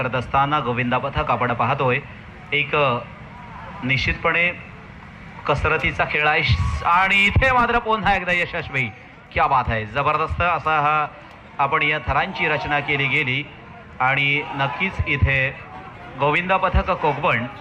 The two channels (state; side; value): identical; both; correlation 1.00